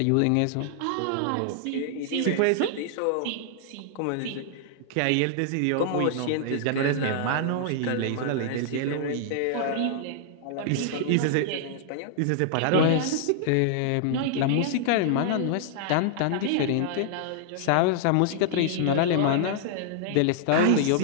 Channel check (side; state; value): both; different; correlation -0.01